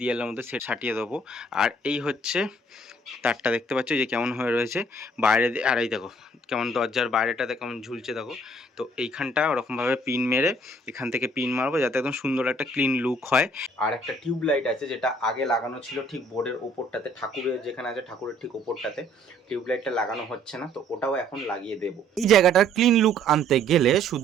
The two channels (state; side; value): normal; both; correlation 0.61